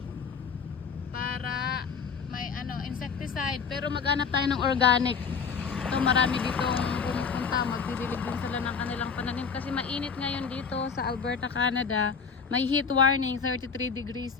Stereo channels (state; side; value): quieter; right; 5.9 dB